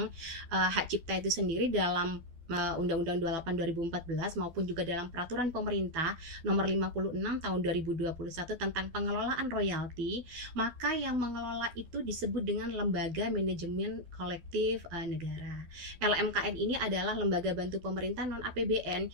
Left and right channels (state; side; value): late; left; 12 ms